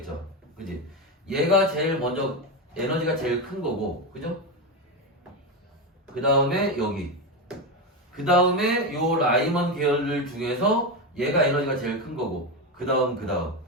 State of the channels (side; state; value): both; normal; correlation 0.13